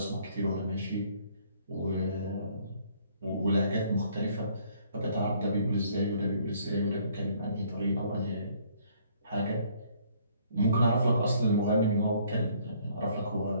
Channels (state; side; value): inverted; both; correlation -0.62